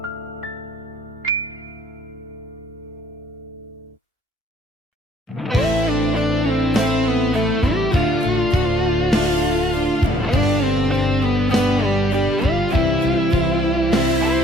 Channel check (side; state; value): both; normal; correlation 0.61